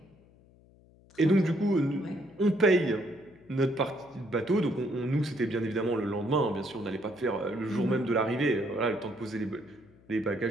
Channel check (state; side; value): noise; left; hum, 27 dB below the sound